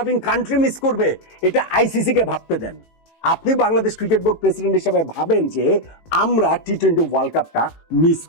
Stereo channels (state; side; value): late; right; 18 ms